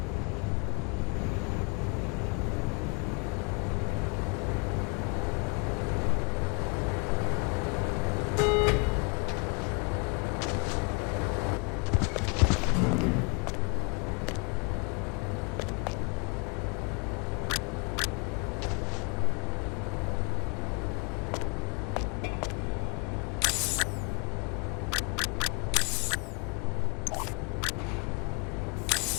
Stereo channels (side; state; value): right; quieter; 32.6 dB